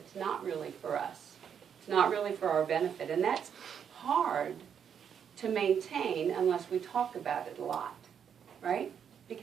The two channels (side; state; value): left; quieter; 7.9 dB